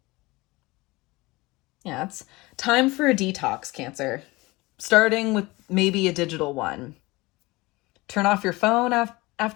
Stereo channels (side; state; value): right; quieter; 22.0 dB